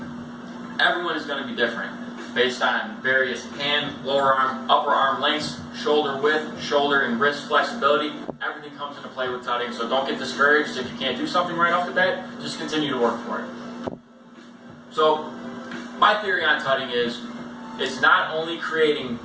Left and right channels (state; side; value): identical; both; correlation 1.00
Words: everyone is going to be different based on various hand, lower arm, upper arm lengths, shoulder width, shoulder and wrist flexibility. Everything comes into play with tutting, so don't get discouraged if you can't do something right off the bat. Just continue to work for it. So my theory on tutting is it's not only creating